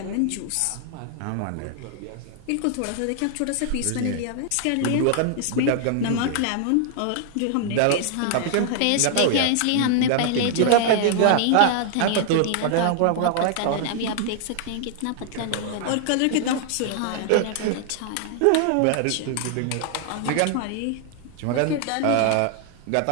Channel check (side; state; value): both; different; correlation -0.01